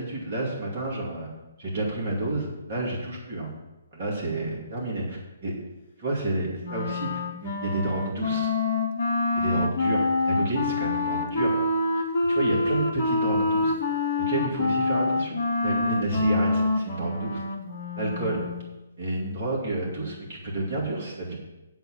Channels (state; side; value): inverted; both; correlation -0.68